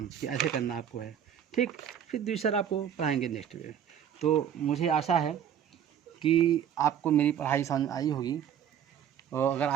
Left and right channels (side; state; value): left; quieter; 9.2 dB